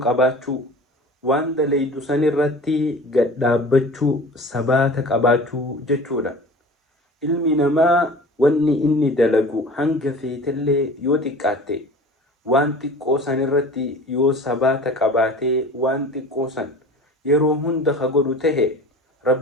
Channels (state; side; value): normal; both; correlation 0.41